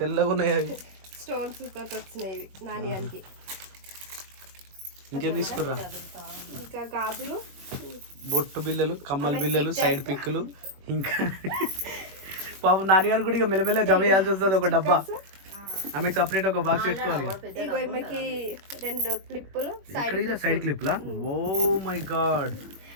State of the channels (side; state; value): left; late; 21 ms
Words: తెల్లగా ఉన్నాయి. అవి స్టోన్స్ తోటి వచ్చినాయి ఇవి నాని అంకి. ఇంకేం తీసుకుర్రా? ఇంకా గాజులు, బొట్టు బిల్లలు, కమ్మల బిల్లలు, సైడ్ పిక్కులు. ఇంకా పాపం నాన్నగారు కూడా ఇక మెల్లమెల్ల జమ చేయాల్సి వస్తుంది. ఒక డబ్బా ఆమెకు సపరేట్ ఒక బాక్స్ పెట్టుకోవాలి. ఇగో ఈమెకి 2 క్లిప్పులు, సైడ్ క్లిప్లా. Oh my god.